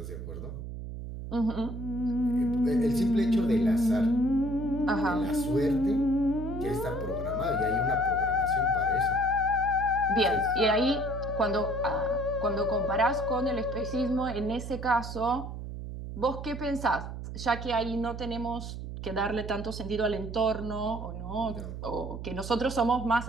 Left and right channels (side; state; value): right; noise; hum, 8 dB below the sound